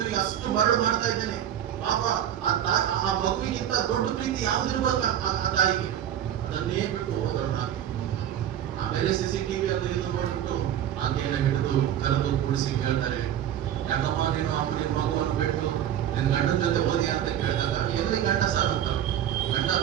ನಿಮಗೆ, ಅಷ್ಟು ಮರಳು ಮಾಡ್ತಾ ಇದ್ದೇನೆ. ಪಾಪ ಆ ಮಗುವಿಗಿಂತ ದೊಡ್ಡ ಪ್ರೀತಿ ಯಾವ್ದು ಇರ್ಬೇಕು ಆ ತಾಯಿಗೆ, ಅದನ್ನೇ ಬಿಟ್ಟು ಹೋದಳು ಹಾಕಿ. ಆಮೇಲೆ CCTV ಅದು ಇದು ನೋಡ್ಬಿಟ್ಟು ಆಕೆಯನ್ನು ಹಿಡಿದು ಕರೆದು ಕೂಡಿಸಿ ಕೇಳ್ತಾರೆ, ಯಾಕಮ್ಮ ನೀನು ನಿನ್ನ ಮಗುವನ್ನು ಬಿಟ್ಟು ನಿನ್ನ ಗಂಡನ ಜೊತೆ ಹೋದಿ ಅಂತ ಕೇಳಿದಾಗ, ಎಲ್ಲಿ ಗಂಡ ಸರ್ ಅಂತ. ಗಂಡ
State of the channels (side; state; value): left; quieter; 10.6 dB